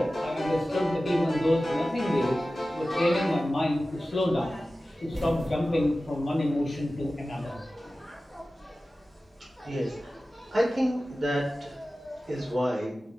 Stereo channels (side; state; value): both; normal; correlation 0.96